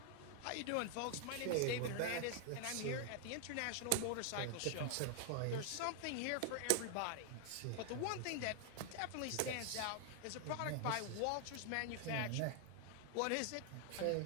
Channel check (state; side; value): different; both; correlation 0.00